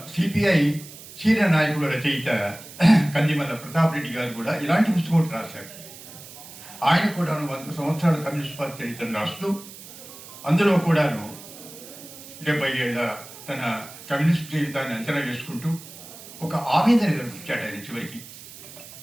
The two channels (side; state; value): right; noise; hiss, 16 dB below the sound